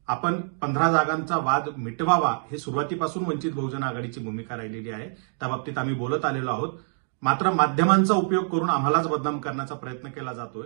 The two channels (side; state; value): left; silent; digital silence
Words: आपण 15 जागांचा वाद मिटवावा हे सुरुवातीपासून वंचित बहुजन आघाडीची भूमिका राहिलेली आहे. त्या बाबतीत आम्ही बोलत आलेलो आहोत. मात्र माध्यमांचा उपयोग करून आम्हालाच बदनाम करण्याचा प्रयत्न केला जातोय,